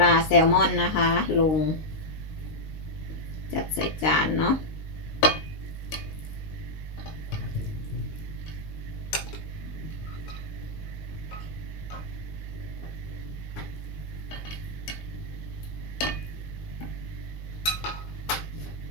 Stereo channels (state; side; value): late; right; 19 ms